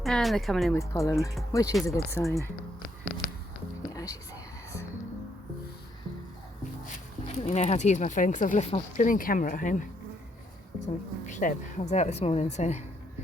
And they're coming in with pollen, which is a good sign. Yeah, as you see this. Don't really know how to use my phone because I've left my brilliant camera at home. So I'm a pleb. I was out this morning, so I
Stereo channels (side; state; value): both; normal; correlation 0.73